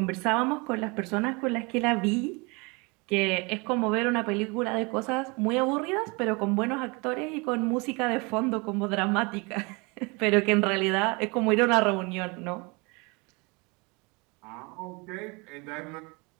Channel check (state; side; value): quieter; left; 28.4 dB